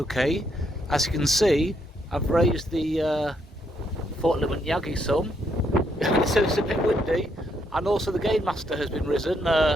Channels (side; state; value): both; normal; correlation 0.74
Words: As you can see, I've raised the Fort Limit Yagi some, so it's a bit windy, and also the gain master has been risen